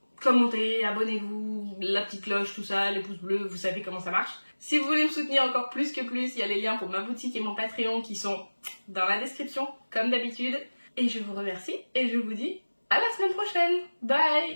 commentez, abonnez-vous, la petite cloche, tout ça, les pouces bleus, vous savez comment ça marche. Si vous voulez me soutenir encore plus que plus, il y a les liens pour ma boutique et mon Patreon qui sont dans la description, comme d'habitude. Et je vous remercie et je vous dis à la semaine prochaine.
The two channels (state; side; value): inverted; both; correlation -1.00